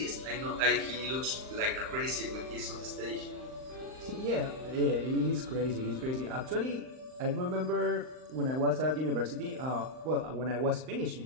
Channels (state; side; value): late; left; 39 ms